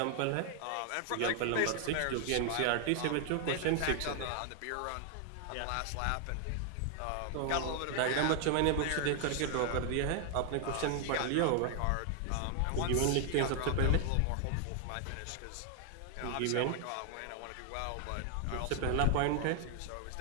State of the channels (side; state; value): both; different; correlation 0.00